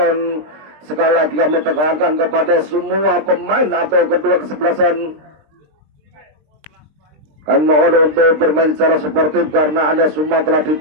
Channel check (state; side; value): late; left; 20 ms